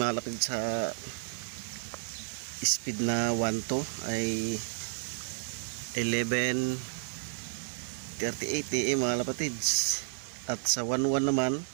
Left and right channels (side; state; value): left; silent; 55 dB below the other